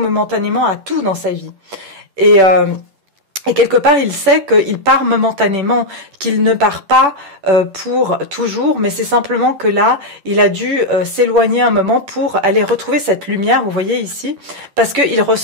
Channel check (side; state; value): left; late; 10 ms